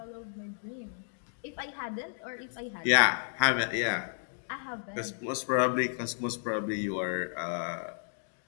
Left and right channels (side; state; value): right; silent; digital silence